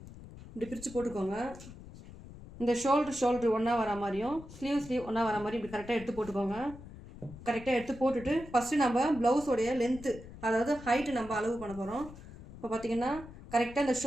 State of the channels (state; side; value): noise; left; rumble, 16 dB below the sound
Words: இப்படி பிரித்து போட்டுக்கோங்க. இந்த ஷோல்ட்ரு ஒன்றா வர மாதிரியும் ஸ்லீவ் ஒன்றா வர மாதிரி இப்படி கரெக்டாக எடுத்து போட்டுக்கோங்க. கரெக்டாக எடுத்து போட்டுட்டு ஃபஸ்ட்டு நம்ம ப்ளவுஸோடைய லென்த்து, அதாவது ஹைட்டு நம்ம அளவு பண்ண போகிறோம். இப்போ பார்த்தீங்கன்னா கரெக்டாக இந்த